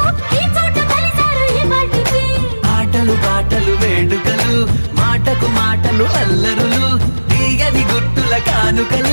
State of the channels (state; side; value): inverted; both; correlation -1.00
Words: ఈ చోట కలిసారు ఈ వాటికి ఆటలు పాటలు వేడుకలు మాటకు మాటలు అల్లరులు తీయని గుర్తుల